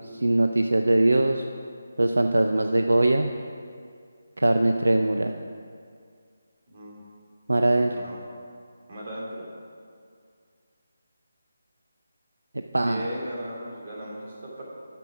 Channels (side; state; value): both; inverted; correlation -0.97